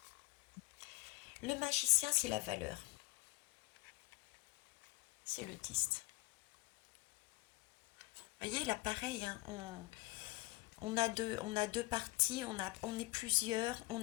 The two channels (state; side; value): quieter; right; 21.1 dB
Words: Le magicien, c'est la valeur. C'est le 10. Vous voyez, là, pareil, hein, on a deux parties, on est plusieurs,